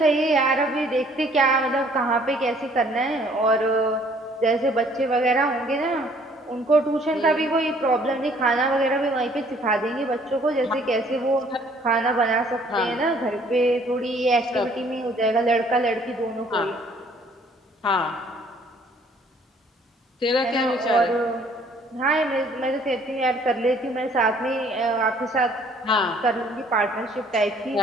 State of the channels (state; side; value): normal; both; correlation 0.59